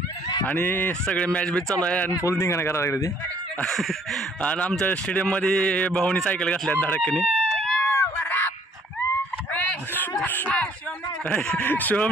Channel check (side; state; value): both; normal; correlation 0.61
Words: आणि सगळे मॅच बीच चालू आहे आणि फुल धिंगाणा करायला लागले ते. आणि आमच्या स्टेडियममध्ये भाऊनी सायकल घातल्या धडकनी.